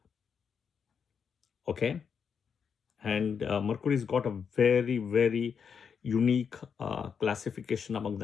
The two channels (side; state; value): right; quieter; 6.7 dB